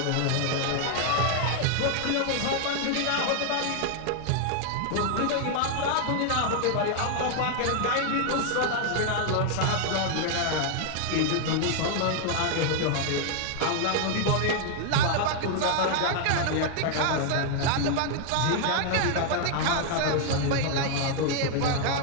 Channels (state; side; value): different; both; correlation 0.00